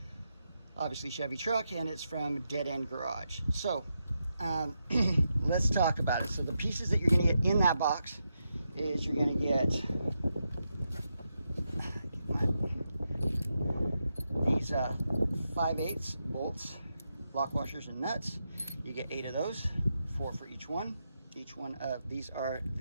obviously Chevy truck, and it's from Deadend Garage. So let's talk about it. So the pieces that you're going to get in that box is you're going to get these 5/8 bolts, lock washers and nuts. You get 8 of those, 4 for each one. Each one of these are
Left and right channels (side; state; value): both; inverted; correlation -0.85